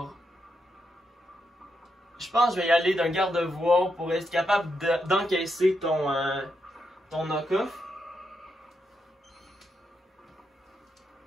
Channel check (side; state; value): both; normal; correlation 0.83